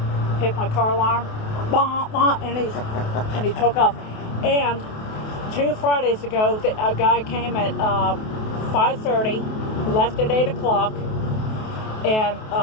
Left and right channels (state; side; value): late; right; 28 ms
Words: hit my car alarm, bah, bah, and he took off. And 2 Fridays ago, a guy came at 5:30, left at 8 o'clock, and